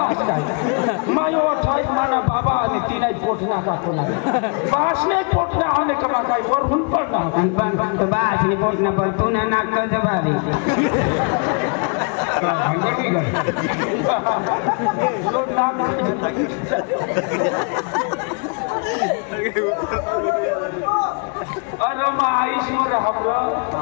काय मायो ठाई माना बाबा आणि तिला पोटना का कोला बासने पोटना आने कमा काय वर हुन पडना बासने पोटना पण तू ना नाक जबारी भंगटी गई लोड नाम अरे मा ईश्वर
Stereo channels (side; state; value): right; quieter; 36.7 dB